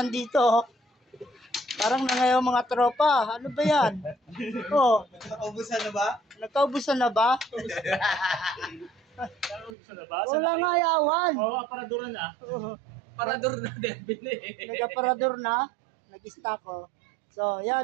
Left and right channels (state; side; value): drops out; left; at 9.7 s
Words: oh. Parang na ngayon mga tropa. Ano ba yan? Oh. Nakaubusan na ba? Nagkaubusan na ba? Wala nga yawan. Oo, aparador na. Parador na, Devin eh. Nag-aparador na. Nag-stock oh. So,